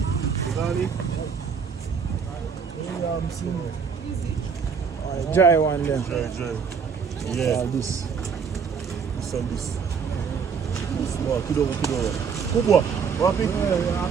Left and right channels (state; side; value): quieter; left; 6.3 dB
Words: Ghani. Dry one there. Dry. Yeah. This. This and this. Small. Kidogo. Kubwa. Wapi?